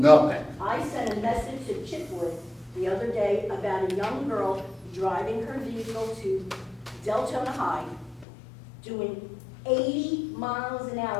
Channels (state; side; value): drops out; right; at 8.2 s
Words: I sent a message to Chipwood the other day about a young girl driving her vehicle to Deltona High, doing 80 miles an